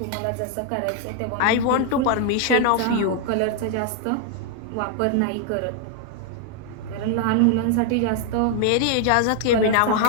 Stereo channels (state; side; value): different; both; correlation 0.00